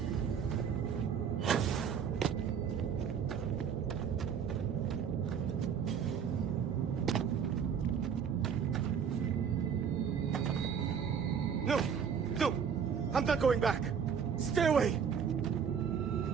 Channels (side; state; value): left; quieter; 7.3 dB